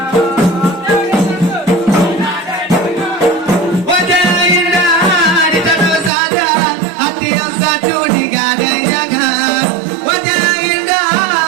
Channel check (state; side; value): drops out; left; at 6.1 s